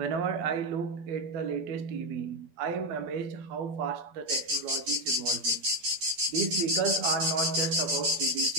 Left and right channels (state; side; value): late; left; 11 ms